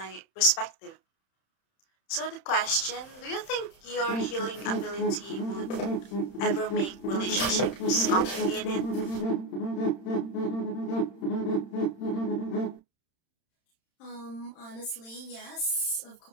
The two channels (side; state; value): right; late; 31 ms